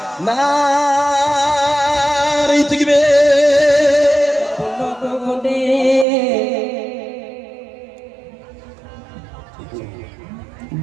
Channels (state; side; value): drops out; left; at 6.1 s